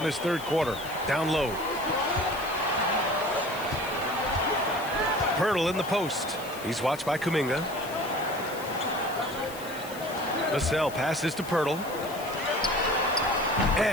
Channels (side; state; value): left; noise; hiss, 15 dB below the sound